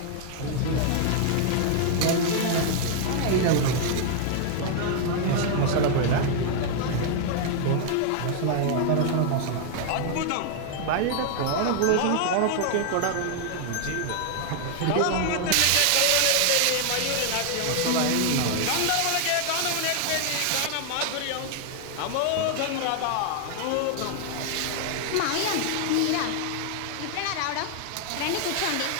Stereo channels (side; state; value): both; different; correlation 0.00